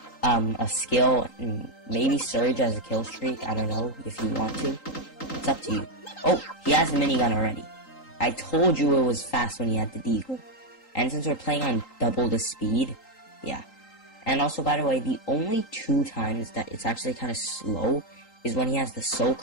a skill, and maybe Surge as a kill streak, I don't know, if you want to. It's up to you. Oh, he has the minigun already. I told you it was fast when he had the Deagle. And since we're playing on double the speed, yeah. And also, by the way, the only 2 times that it's actually kind of slow is when he has the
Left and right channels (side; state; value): right; late; 3.8 ms